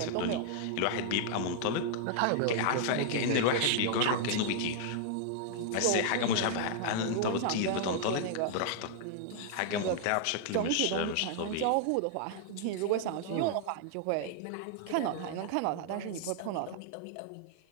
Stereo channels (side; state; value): both; different; correlation -0.01